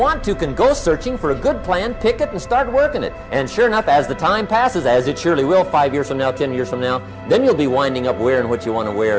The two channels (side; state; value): both; identical; correlation 1.00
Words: to, can go searching for a good plan, pick it, and start working it. And sure enough, as the time passes, as it surely will 5 years from now, 10 years from now, then you'll be winding up wearing what you want to